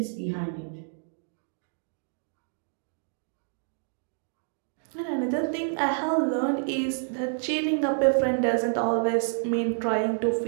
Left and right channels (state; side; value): silent; left; digital silence